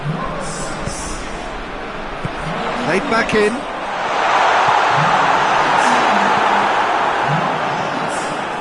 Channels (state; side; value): identical; both; correlation 1.00